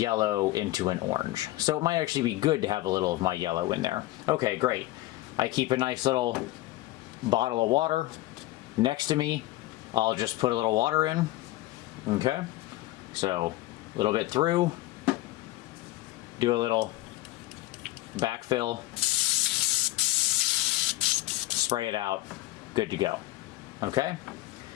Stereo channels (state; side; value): quieter; right; 17.5 dB